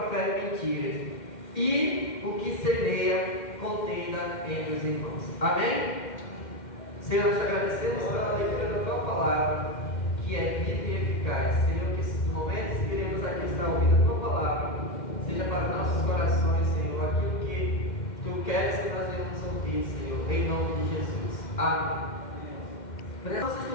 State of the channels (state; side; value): late; right; 2.1 ms